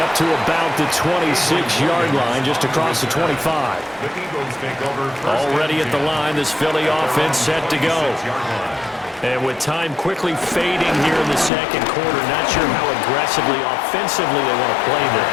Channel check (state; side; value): drops out; right; at 11.5 s